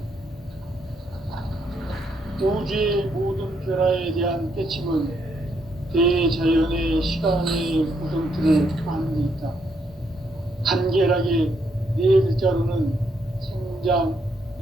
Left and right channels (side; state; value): both; normal; correlation 0.75